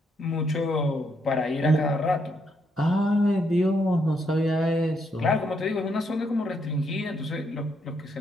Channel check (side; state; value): both; normal; correlation 0.76